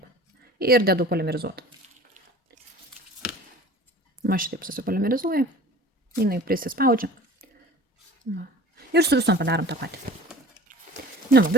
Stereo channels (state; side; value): normal; both; correlation 0.43